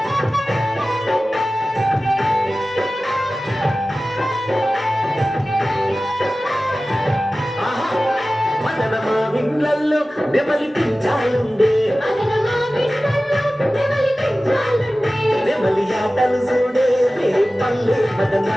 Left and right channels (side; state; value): both; normal; correlation 0.96